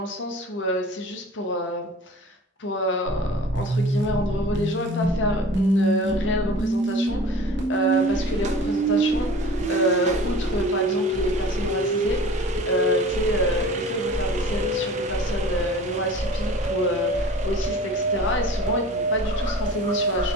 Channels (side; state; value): both; normal; correlation 0.42